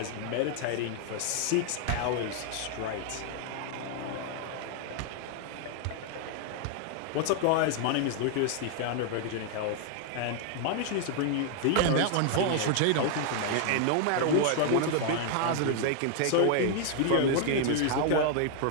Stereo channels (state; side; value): different; both; correlation 0.00